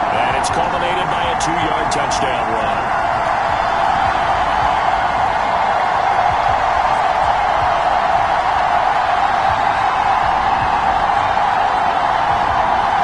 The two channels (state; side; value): identical; both; correlation 1.00